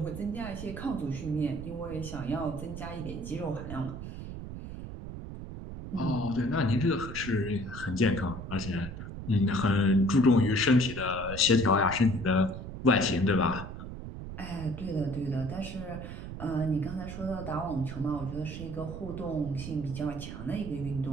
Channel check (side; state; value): right; noise; rumble, 9 dB below the sound